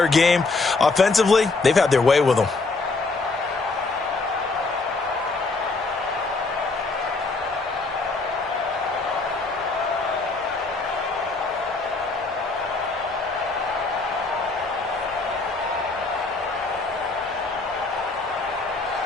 game. Offensively, they've had their way with them.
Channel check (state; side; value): quieter; right; 3.7 dB